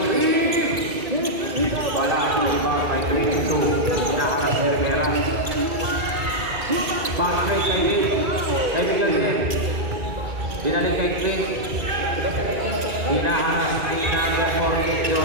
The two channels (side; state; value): left; late; 2.3 ms